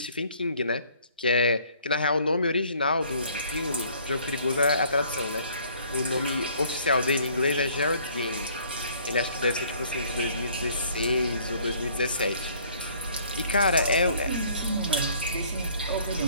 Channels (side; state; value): both; inverted; correlation -0.59